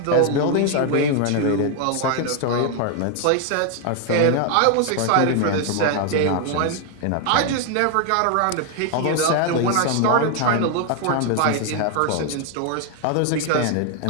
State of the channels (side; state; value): both; different; correlation 0.00